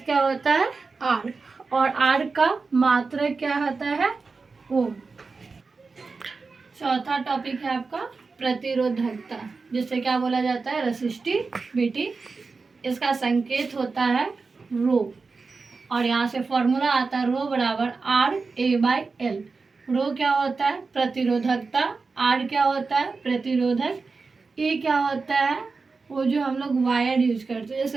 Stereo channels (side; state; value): left; quieter; 4.3 dB